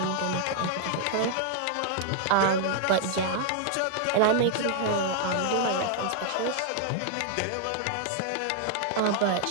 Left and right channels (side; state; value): both; different; correlation 0.00